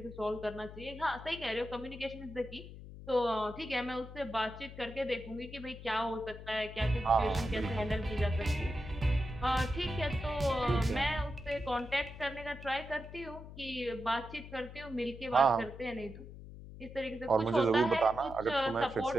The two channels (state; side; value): noise; left; hum, 14 dB below the sound